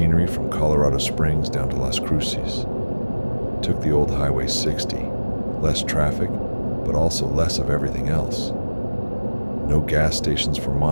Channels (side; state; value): both; inverted; correlation -1.00